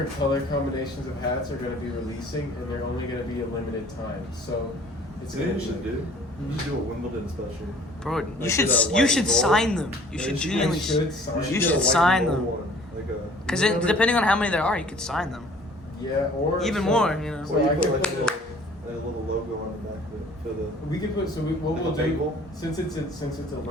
color combinations of hats are going to be releasing, and they're only going to be a limited time. So, it's You know going what you should do? You should do a Wimbledon special. Bro, you Like should the you white should gold. sign them. You Yeah, should you should- genuinely. I should sign. You get should a white sign and them. gold one, like a. Because remember- depending on how many there are, you could sign them. Yeah, or Even so- more, you know. So Or you I put can like put a little logo on the back of it for the. we could put what Like we'll a do bagel? since it's a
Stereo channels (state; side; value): normal; both; correlation 0.52